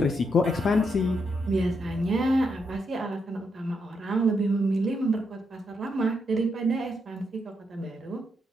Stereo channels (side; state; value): both; normal; correlation 0.80